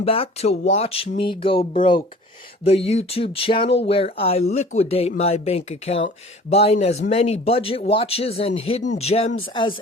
back to Watch Me Go Broke, the YouTube channel where I liquidate my bank account, buying as many budget watches and hidden gems as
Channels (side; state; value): both; normal; correlation 0.46